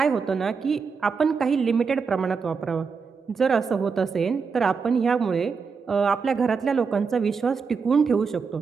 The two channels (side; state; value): left; quieter; 5.4 dB